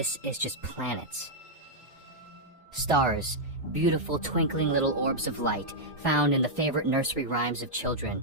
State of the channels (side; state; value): both; normal; correlation -0.05